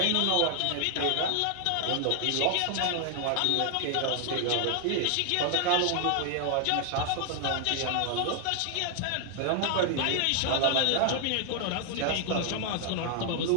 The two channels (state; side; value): different; both; correlation 0.00